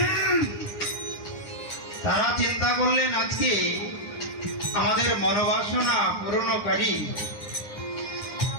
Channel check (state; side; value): late; right; 9.8 ms